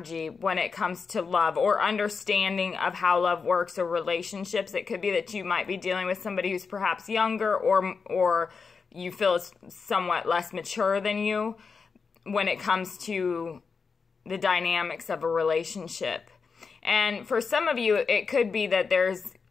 when it comes to love or understanding of how love works or relationships. It could be that you might be dealing with somebody who's perhaps younger or you feel is somewhat less mature than you when it comes to the dynamics of a relationship. And for some of you, it could be that there's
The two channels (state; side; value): quieter; right; 5.2 dB